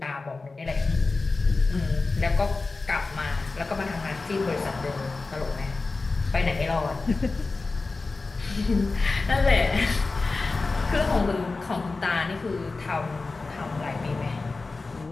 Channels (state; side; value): quieter; right; 3.7 dB